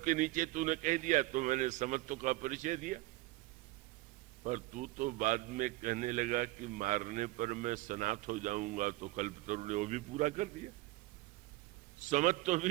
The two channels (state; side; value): quieter; left; 19.5 dB